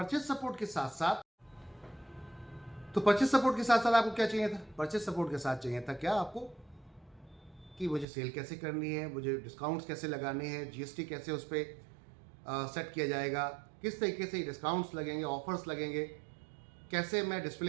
सपोर्ट के साथ साथ आपको क्या चाहिए था? परचेज सपोर्ट के साथ चाहिए था क्या आपको, कि मुझे सेल कैसे करनी है, मुझे डिस्काउंट्स कैसे लगाने हैं, जीएसटी कैसे उस पर सेट किया जाएगा, किस तरीके से डिस्काउंट्स लगेंगे, ऑफर्स लगेंगे, कैसे मैं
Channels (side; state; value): left; drops out; at 8.1 s